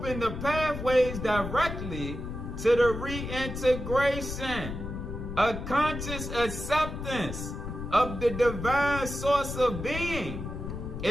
the pathways directly to the reintegration. A conscious acceptance of the divine source of being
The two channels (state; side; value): noise; left; rumble, 7 dB below the sound